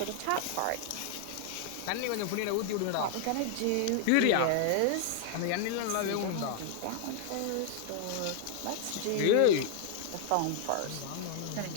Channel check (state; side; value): different; both; correlation 0.00